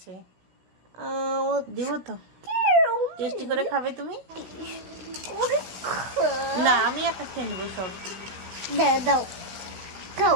দেবো তো। টেস্টি করে খাবে তুমি? না, আমি একা খেয়ে নেবো সব। দাও দাও,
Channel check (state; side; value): late; left; 16 ms